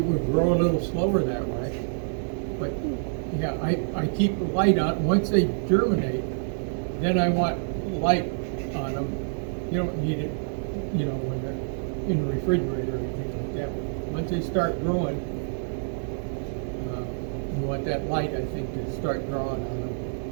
would grow a little slower that way. But yeah, I keep the light on. Once they germinate, then I want light on them. You don't need it, when they're in the refrigerator or anything like that. Once they start growing, you want that light, I think, to start drawing on them.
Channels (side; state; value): left; silent; digital silence